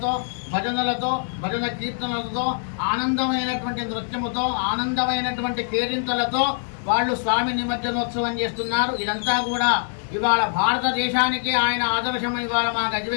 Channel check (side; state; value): right; silent; 63 dB below the other